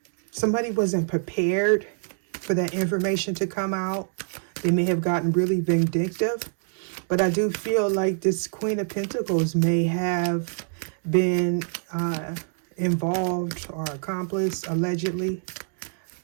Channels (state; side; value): silent; left; 61 dB below the other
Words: Somebody wasn't prepared for that information to come out. They may have gotten really vindictive. But I do feel like this Queen of Pentacles may have been involved or accomplice, allegedly.